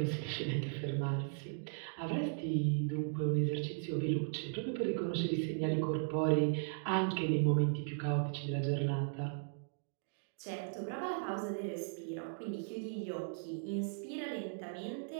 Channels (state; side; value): silent; left; digital silence